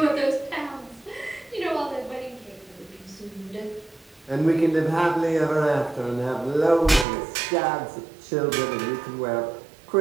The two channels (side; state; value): left; drops out; at 7.1 s